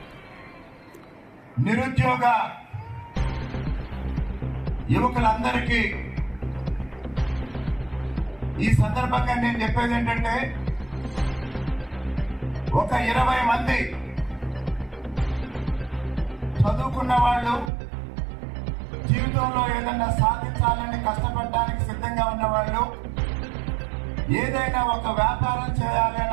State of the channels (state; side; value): drops out; left; at 17.7 s